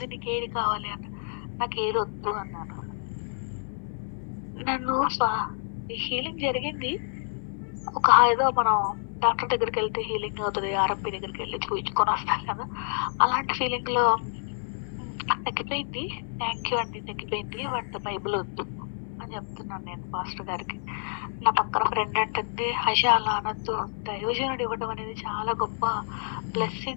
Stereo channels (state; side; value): silent; right; digital silence